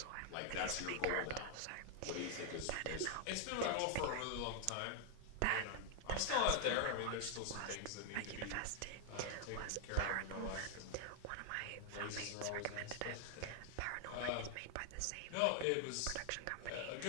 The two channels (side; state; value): both; different; correlation 0.00